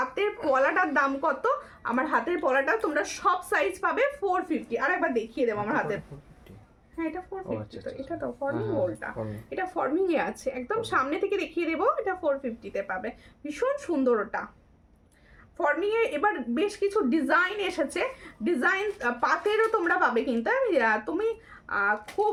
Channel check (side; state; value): both; identical; correlation 1.00